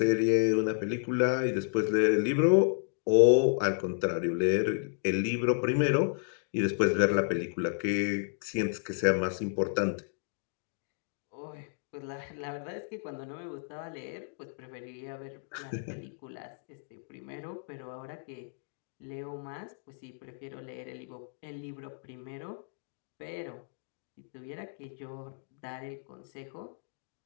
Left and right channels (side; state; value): right; silent; digital silence